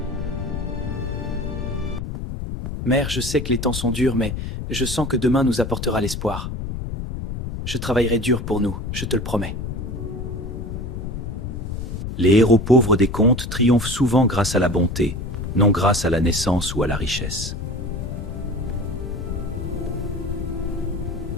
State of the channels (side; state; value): left; noise; rumble, 5 dB below the sound